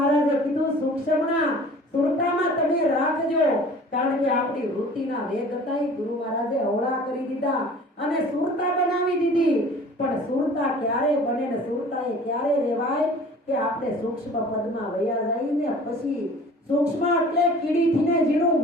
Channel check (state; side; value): normal; both; correlation 0.46